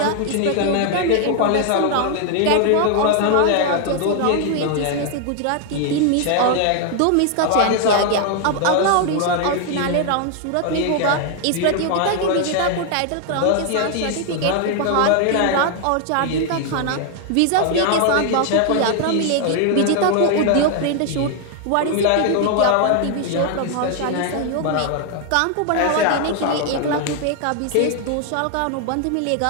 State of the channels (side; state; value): both; different; correlation 0.00